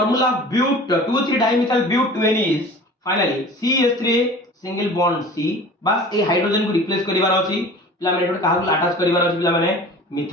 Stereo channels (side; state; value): both; normal; correlation 0.41